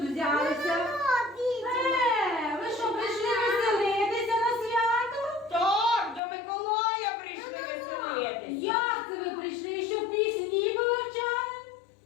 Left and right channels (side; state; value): right; drops out; at 6.2 s